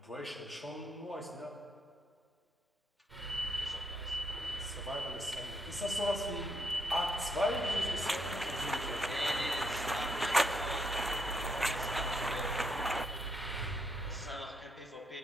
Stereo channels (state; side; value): normal; both; correlation 0.76